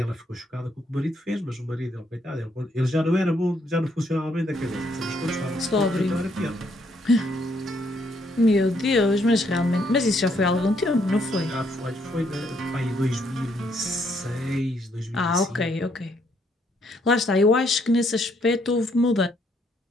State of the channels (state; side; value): normal; both; correlation 0.71